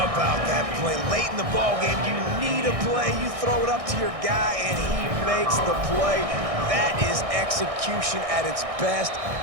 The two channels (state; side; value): late; left; 1.6 ms